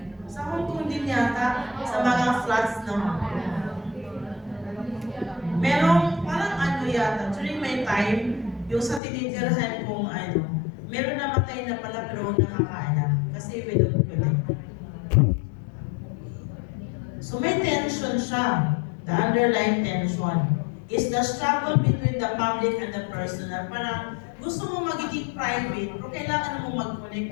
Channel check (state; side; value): drops out; right; at 9.0 s